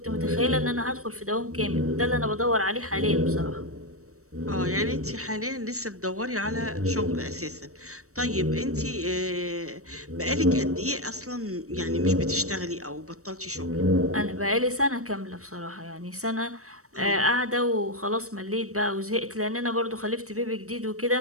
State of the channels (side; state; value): left; late; 0.65 ms